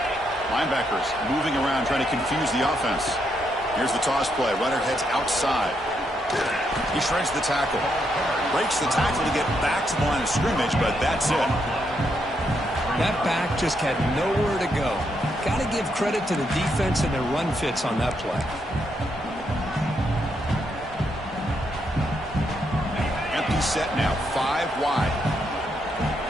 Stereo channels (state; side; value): normal; both; correlation 0.78